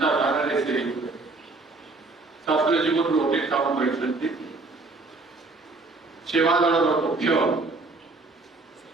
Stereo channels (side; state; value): left; quieter; 3.5 dB